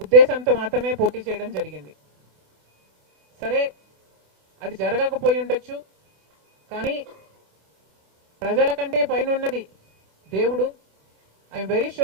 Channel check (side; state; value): left; late; 26 ms